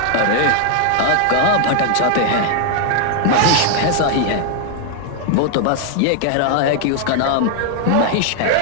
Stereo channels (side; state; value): both; different; correlation 0.00